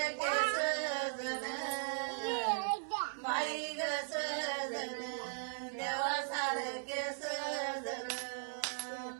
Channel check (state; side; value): silent; left; 52 dB below the other